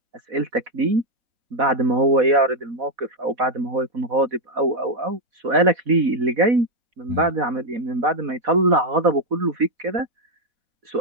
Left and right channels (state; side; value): late; left; 4.1 ms